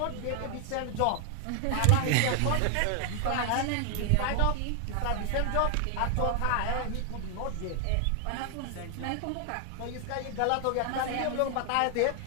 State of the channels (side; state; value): both; different; correlation 0.00